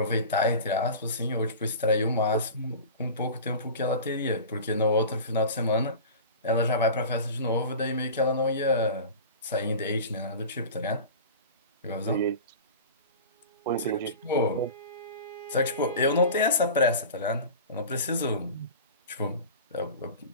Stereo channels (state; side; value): inverted; both; correlation -0.35